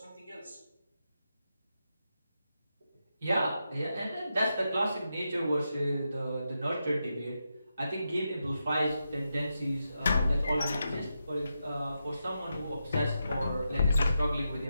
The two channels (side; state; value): both; inverted; correlation -0.86